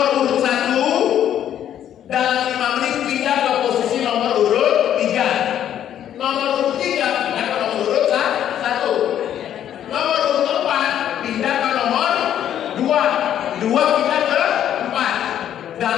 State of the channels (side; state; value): right; quieter; 10.5 dB